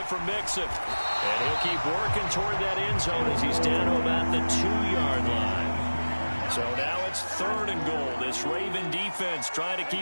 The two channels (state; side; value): inverted; both; correlation -1.00